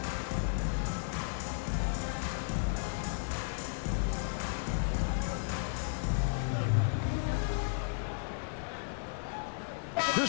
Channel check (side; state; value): right; silent; 55 dB below the other